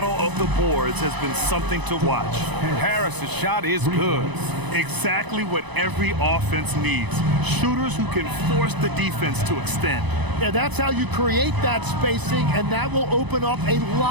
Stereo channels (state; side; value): late; left; 1.0 ms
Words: of the boards has been something to watch. Harris's shot is good. Exactly what every offense needs. Shooters who can force the defense to extend. Yeah, that's how you create that spacing, and that will open up a